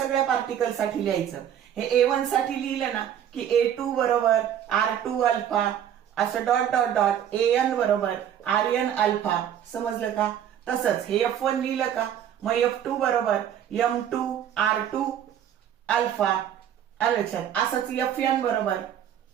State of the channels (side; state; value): left; quieter; 9.8 dB